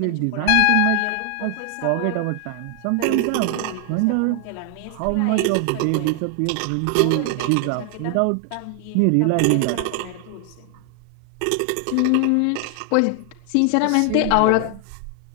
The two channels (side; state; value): both; different; correlation 0.00